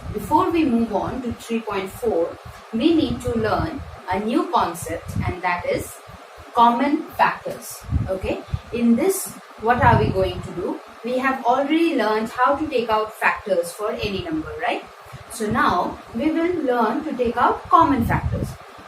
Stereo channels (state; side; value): identical; both; correlation 1.00